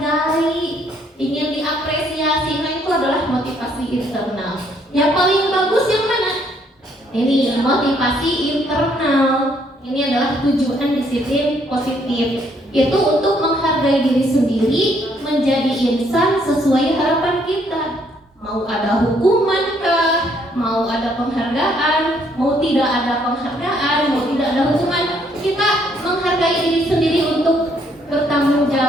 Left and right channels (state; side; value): normal; both; correlation 0.68